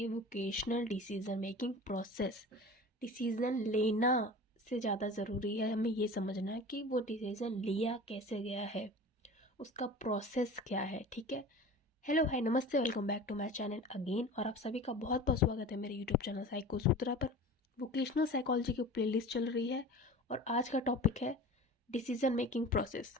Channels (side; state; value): both; normal; correlation 0.37